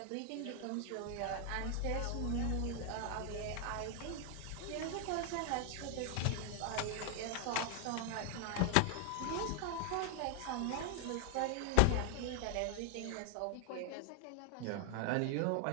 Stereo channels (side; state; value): both; different; correlation 0.00